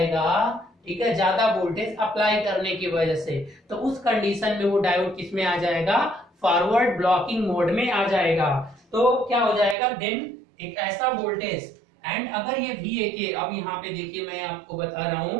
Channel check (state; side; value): drops out; left; at 9.8 s